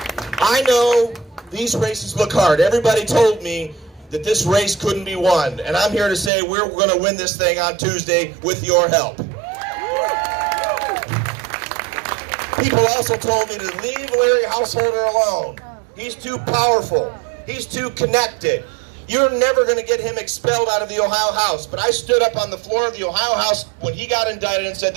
I know these races look hard. Everybody told me that this race couldn't be won. And I'm here to say we're going to win this thing on Tuesday with your help. People also told me to leave Larry Householder alone. He's too powerful. He's too connected. You're never going to get him expelled out of the Ohio House. But I stood up on the floor of the Ohio House when he got indicted and said,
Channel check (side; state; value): left; drops out; at 6.3 s